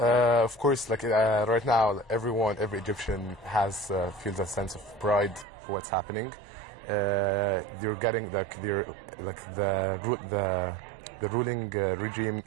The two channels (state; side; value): drops out; left; at 5.5 s